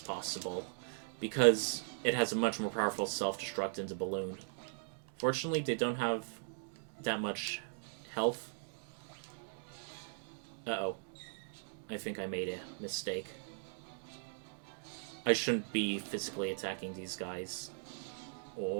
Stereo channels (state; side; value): silent; left; digital silence